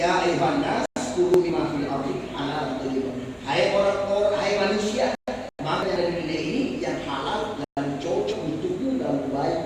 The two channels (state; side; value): identical; both; correlation 1.00